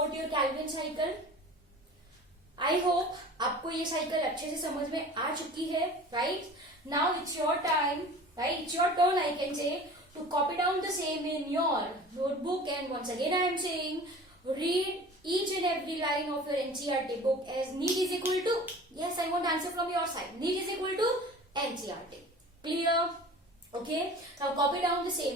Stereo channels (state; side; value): normal; both; correlation 0.41